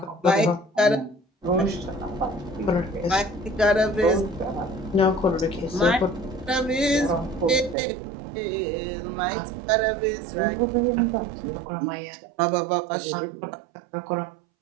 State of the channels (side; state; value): left; drops out; at 7.8 s